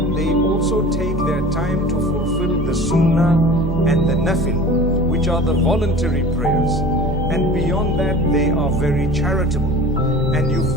they also take their time to fulfill the sunnah and the nafil, which are the voluntary prayers. And beyond that they are very charitable, and you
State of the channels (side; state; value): both; normal; correlation 0.40